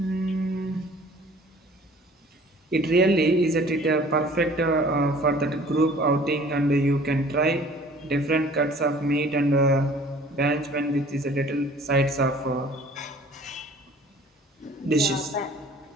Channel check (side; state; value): both; normal; correlation 0.51